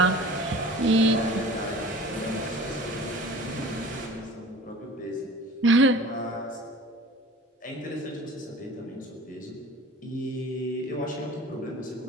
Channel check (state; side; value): normal; both; correlation 0.43